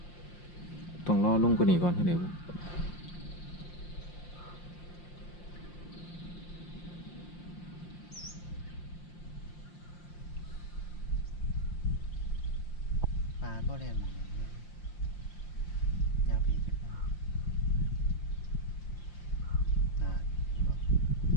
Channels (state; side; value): late; right; 5.7 ms